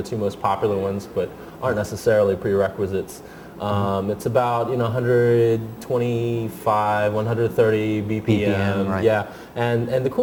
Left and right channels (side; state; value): both; identical; correlation 1.00